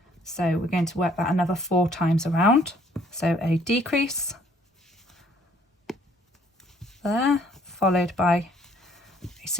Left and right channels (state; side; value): normal; both; correlation 0.62